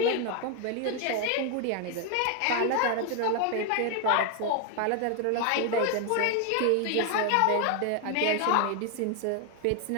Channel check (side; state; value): both; different; correlation 0.01